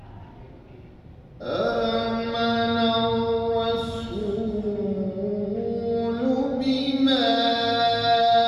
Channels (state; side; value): identical; both; correlation 1.00